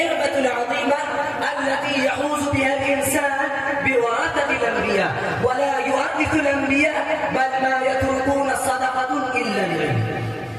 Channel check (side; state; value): both; identical; correlation 1.00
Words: العظيمة التي يحوز بها الإنسان بورثة الأنبياء، ولا يورث الأنبياء بل ما يتركون صدقة إلا العلم،